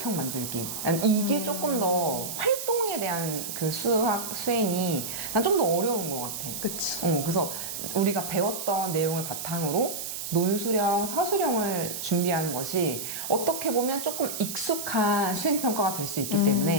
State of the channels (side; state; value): right; noise; hiss, 6 dB below the sound